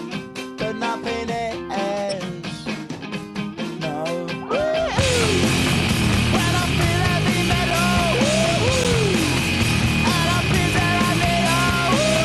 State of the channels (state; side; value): identical; both; correlation 1.00